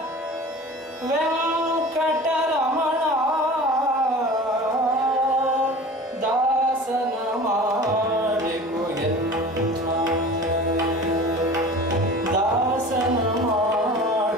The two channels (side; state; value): both; normal; correlation 0.39